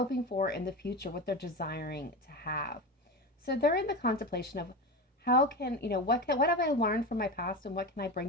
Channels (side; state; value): both; normal; correlation 0.23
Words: for in the future, what they're desiring to have. So they're in the contemplation of how can, what have I learned from my past and what can I bring